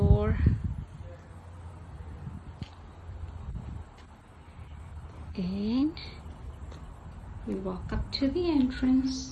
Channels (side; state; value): both; identical; correlation 1.00